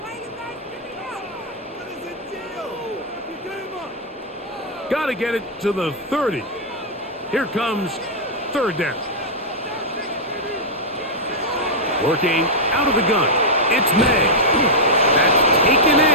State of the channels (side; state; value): both; normal; correlation -0.07